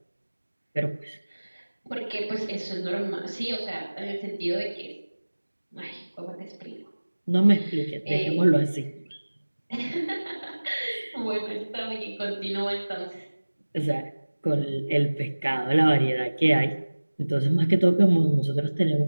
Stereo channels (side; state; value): both; inverted; correlation -1.00